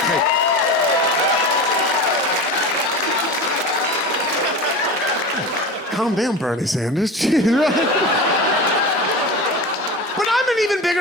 Calm down, Bernie Sanders. Jeez, right? But I'm an even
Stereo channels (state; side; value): normal; both; correlation 0.29